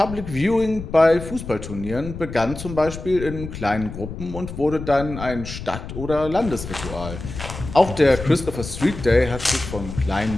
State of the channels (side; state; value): left; noise; rumble, 10 dB below the sound